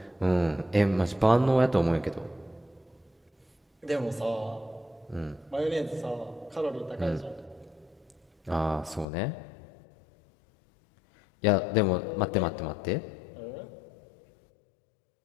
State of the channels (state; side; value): drops out; right; at 9.1 s